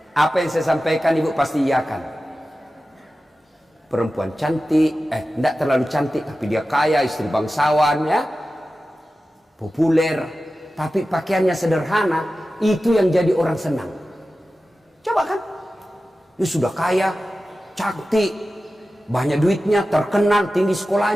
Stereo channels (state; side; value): normal; both; correlation 0.94